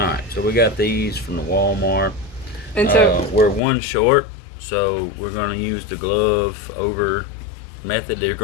so we got these from the Walmart. And so we're one short, so we're going to use the glove over method. They're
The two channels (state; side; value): drops out; right; at 3.6 s